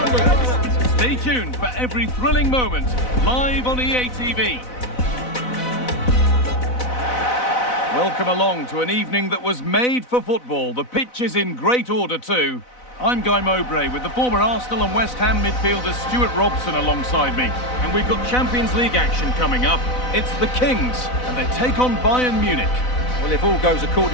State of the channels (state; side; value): late; right; 4.0 ms